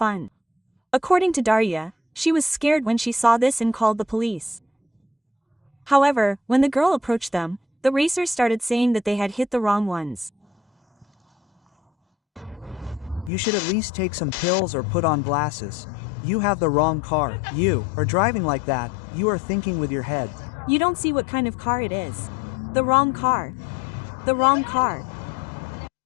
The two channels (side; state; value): right; drops out; at 13.3 s